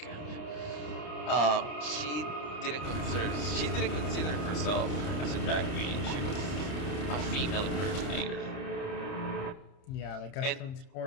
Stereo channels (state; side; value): late; right; 30 ms